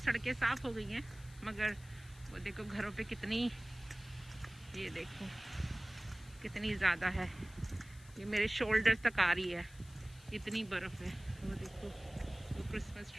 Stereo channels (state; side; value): noise; left; hiss, 22 dB below the sound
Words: साफ हो गई हैं, मगर वो देखो घरों पे कितनी, ये देखो कितनी ज़्यादा है। ये मेरे शोल्डर तक आ रही है, इतनी बर्फ़ है। वो देखो वो क्रिसमस